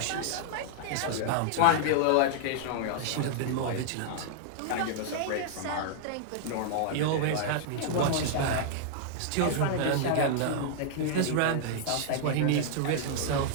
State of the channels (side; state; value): both; different; correlation -0.01